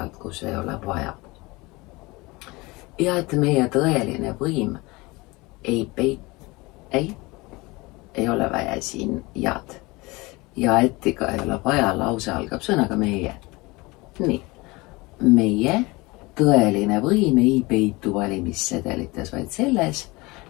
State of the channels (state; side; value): quieter; right; 23.3 dB